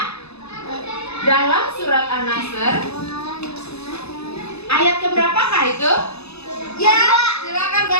Dalam surat An-Nasr ayat keberapakah itu? Ya, silakan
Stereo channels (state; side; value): late; right; 0.79 ms